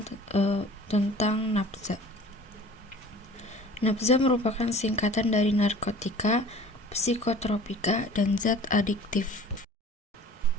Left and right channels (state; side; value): normal; both; correlation 0.45